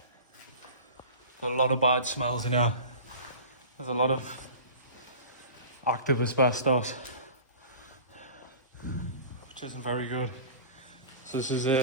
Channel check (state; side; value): inverted; both; correlation -0.38